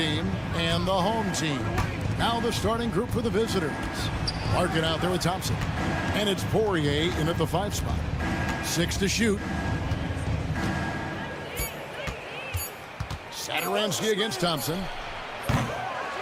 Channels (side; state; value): both; identical; correlation 1.00